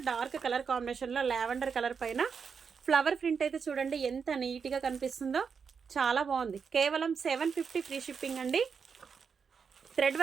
dark colour కాంబినేషన్లో లావెండర్ కలర్ పైన ఫ్లవర్ ప్రింట్ అయితే చూడండి ఎంత నీట్గా కనిపిస్తుందో, చాలా బాగుంది. కేవలం 750 ఫ్రీ షిప్పింగ్ అండి. థ్రెడ్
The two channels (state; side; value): quieter; left; 6.1 dB